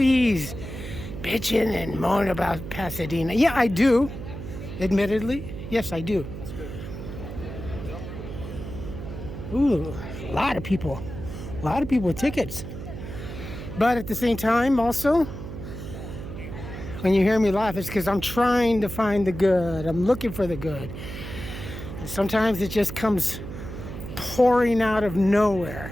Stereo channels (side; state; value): right; noise; hum, 9 dB below the sound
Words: bitching and moaning about Pasadena. Yeah, I do. Admittedly. Yes, I do. Ooh, a lot of people. A lot of people with tickets. But at the same time, also, When you hear me laugh, it's because I'm trying to find the good. I'm looking for the good. And sometimes it just comes pouring out of